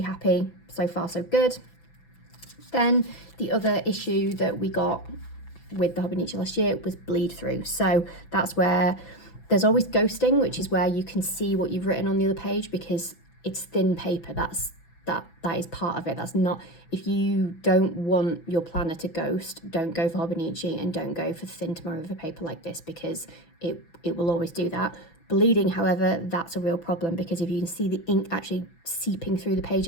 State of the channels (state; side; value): late; right; 6.0 ms